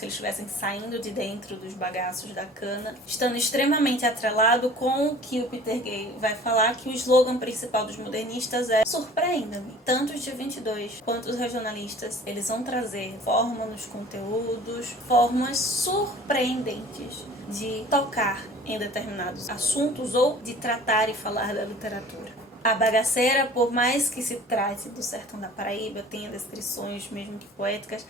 eles estivessem saindo de dentro dos bagaços da cana, estando extremamente atrelado com o que o Peter Gay vai falar, que o slogan principal dos modernistas é "Surpreenda-me". Tanto os de 22 quanto os regionalistas, eles vão trazer forma nos conteúdos, formas surpreendentes de tocar em determinados assuntos ou de tratar e falar da literatura. A bagaceira, por mais que se trate do sertão da Paraíba, tenha descrições mesmo que poéticas,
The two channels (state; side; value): normal; both; correlation 0.47